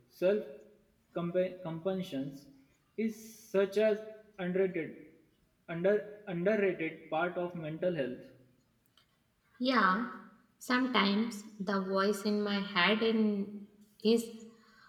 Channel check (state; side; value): identical; both; correlation 1.00